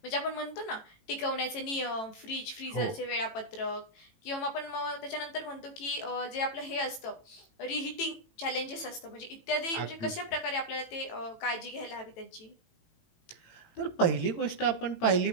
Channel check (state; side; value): late; right; 18 ms